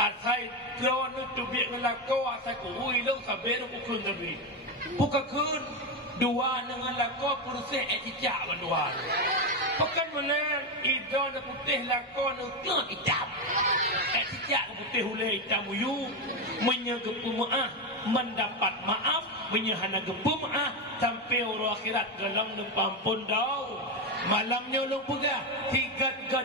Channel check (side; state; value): both; normal; correlation 0.11